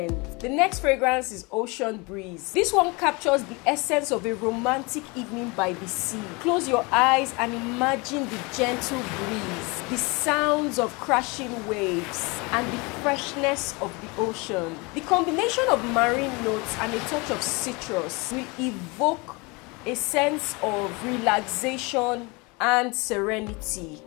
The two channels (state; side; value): quieter; right; 27.4 dB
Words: The next fragrance is Ocean Breeze. This one captures the essence of a romantic evening by the sea. Close your eyes and imagine the gentle breeze, the sounds of crashing waves, and the freshness of the ocean. The combination of marine notes and a touch of citrus will evoke a sense of relaxation and serenity,